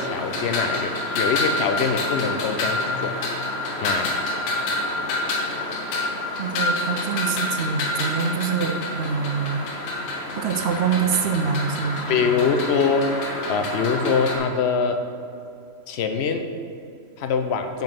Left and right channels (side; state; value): right; late; 3.1 ms